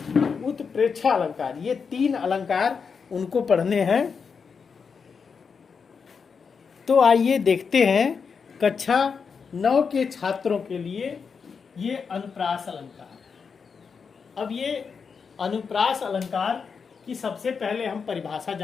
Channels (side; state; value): right; quieter; 5.8 dB